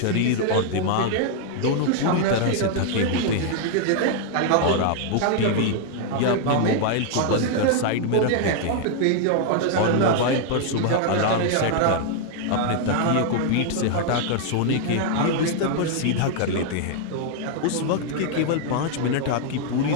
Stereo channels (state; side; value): different; both; correlation 0.00